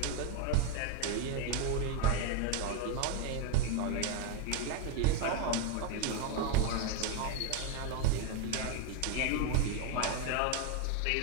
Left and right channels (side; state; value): both; different; correlation 0.02